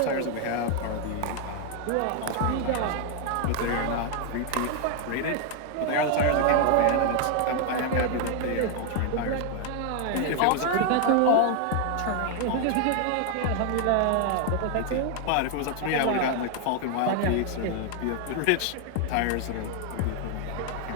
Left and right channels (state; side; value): different; both; correlation 0.00